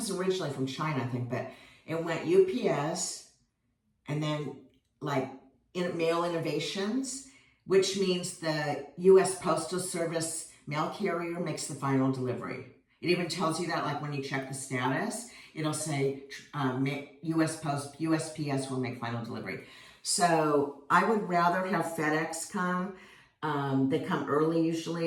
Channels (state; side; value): identical; both; correlation 1.00